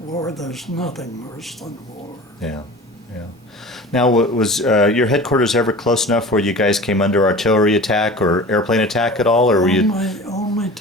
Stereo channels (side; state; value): both; normal; correlation 0.38